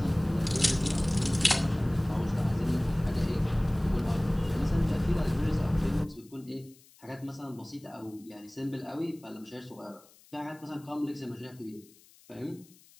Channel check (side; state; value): left; noise; hiss, 26 dB below the sound